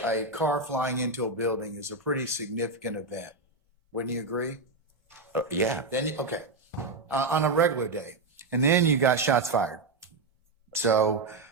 a car flying into a building is a pretty significant event. Wouldn't you agree? Yeah. Then, okay, on a regular day. And then you got shots fired. So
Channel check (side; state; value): left; quieter; 3.6 dB